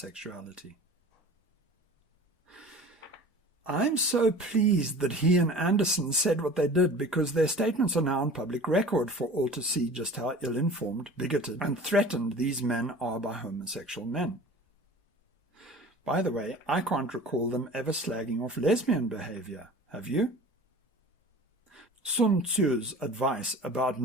I'm so pleased that he and Anderson said what they did, because their statements are now on public record for all to see just how ill-informed, bigoted, and threatened these men are by homosexual men. By the way, I can't recall them ever slagging off lesbian behavior. Have you? Sun Tzu's advice about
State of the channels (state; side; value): normal; both; correlation 0.41